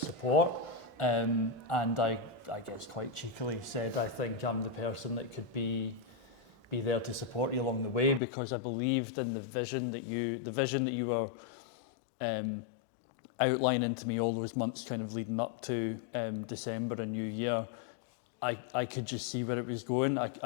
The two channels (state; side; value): drops out; right; at 8.2 s